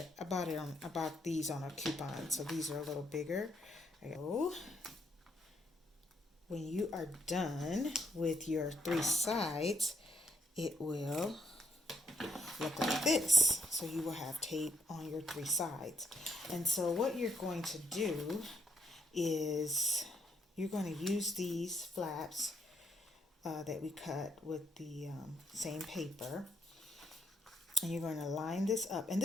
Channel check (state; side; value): normal; both; correlation 0.74